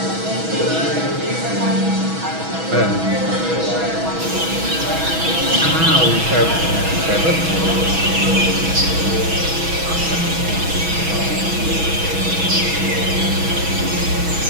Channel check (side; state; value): left; late; 6.2 ms